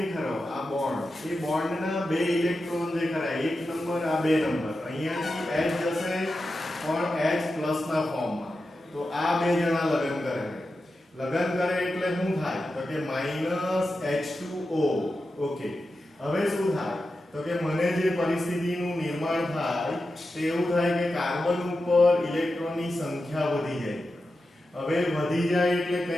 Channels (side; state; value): both; normal; correlation 0.91